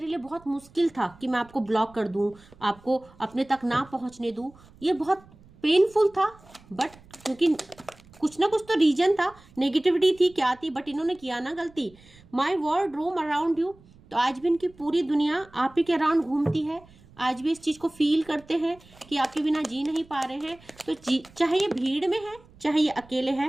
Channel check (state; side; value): noise; right; rumble, 25 dB below the sound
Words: लिए बहुत मुश्किल था कि मैं आपको ब्लॉक कर दूं, आपको अपने तक ना पहुंचने दूं, ये बहुत पेनफुल था, बट क्योंकि कुछ ना कुछ तो रीजन था, नेगेटिविटी थी, क्या थी, बट इन्होंने किया ना गलती। My world roam around you, तो आज भी इनकी पूरी दुनिया आप ही के अराउंड घूमती है। आज भी इस चीज को फील करते हैं कि आपके बिना जी नहीं पा रहे हैं। तो चाहे ये भीड़ में है चाहे ये अकेले